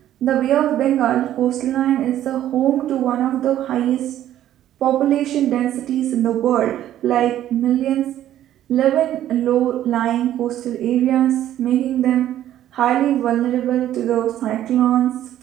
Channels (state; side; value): quieter; left; 12.2 dB